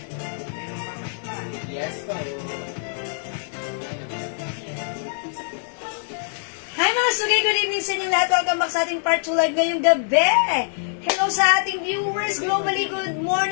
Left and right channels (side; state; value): right; silent; 63 dB below the other